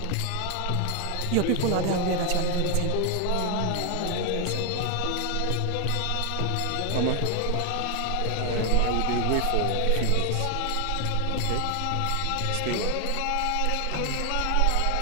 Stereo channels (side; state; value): both; different; correlation 0.00